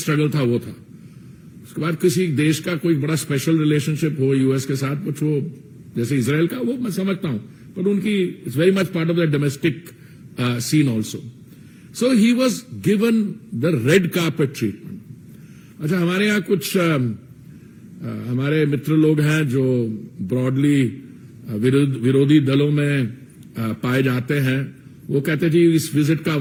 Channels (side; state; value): both; identical; correlation 1.00